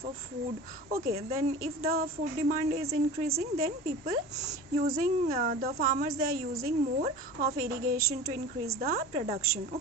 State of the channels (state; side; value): normal; both; correlation 0.36